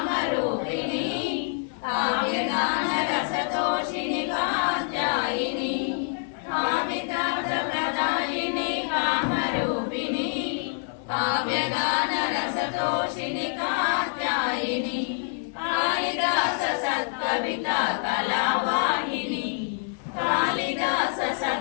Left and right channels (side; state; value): right; silent; 61 dB below the other